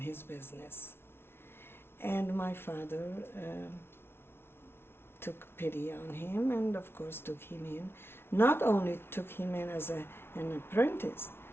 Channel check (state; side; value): late; right; 0.12 ms